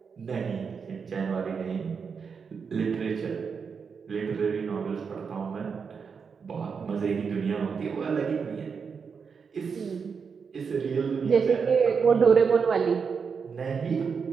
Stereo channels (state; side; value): quieter; left; 5.9 dB